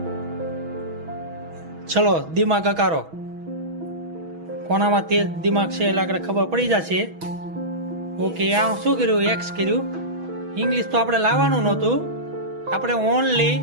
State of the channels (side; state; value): left; late; 6.2 ms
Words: ચલો દિમાગ અકારો. કોનામાં તેજ દિમાગ છે એટલે આગળ ખબર પડી જશે. ઓકે, આ શું કર્યું? એક્સ કર્યું. ઇંગ્લિશ તો આપણે લાવવાનું નહોતું, આપણે ઓનલી.